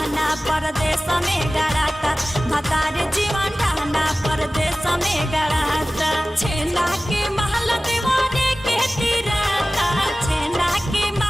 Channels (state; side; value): normal; both; correlation 0.97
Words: परदेश में गड़ाता, भतार जीवन रहना परदेश में गड़ाता। छेना के महल दीवाने के तिराता, छेना के